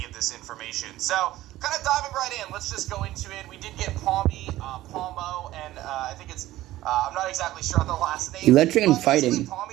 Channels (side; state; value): left; quieter; 15.6 dB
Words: of this information. So, kind of diving right in, let's just go into it. We did get Palmo, and I think it's I'm not exactly sure on the last name. Electric and fighting.